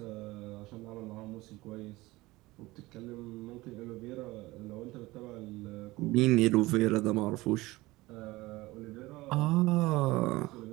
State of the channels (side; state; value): left; quieter; 19.9 dB